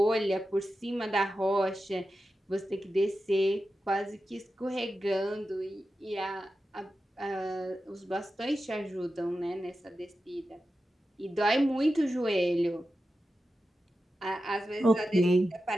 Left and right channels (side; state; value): both; normal; correlation 0.92